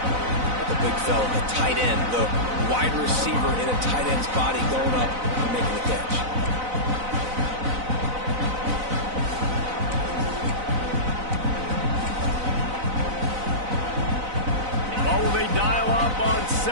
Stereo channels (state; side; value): late; left; 4.0 ms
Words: The big fella, the tight end, the wide receiver in a tight end's body going up and making the catch. Well, will they dial up on